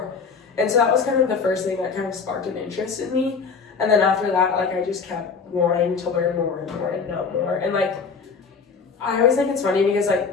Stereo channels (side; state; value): right; quieter; 5.4 dB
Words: And so that was kind of the first thing that kind of sparked an interest in me. And then after that, like, I just kept wanting to learn more and more and know more. And like, I always think it's funny because like